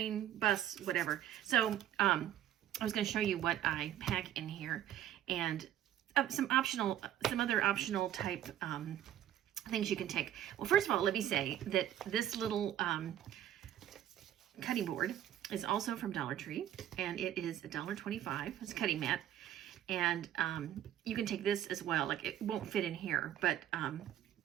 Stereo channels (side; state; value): left; quieter; 11.5 dB